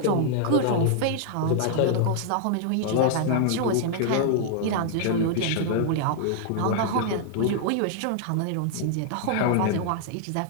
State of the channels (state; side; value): different; both; correlation -0.01